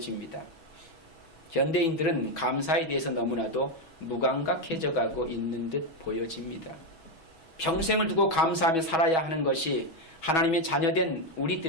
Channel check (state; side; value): late; right; 6.2 ms